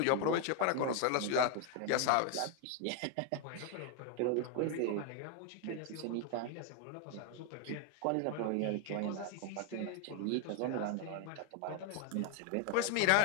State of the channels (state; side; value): different; both; correlation 0.00